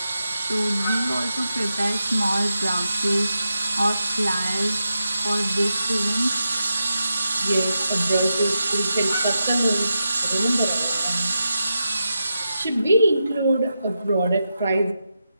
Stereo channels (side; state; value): both; inverted; correlation -0.88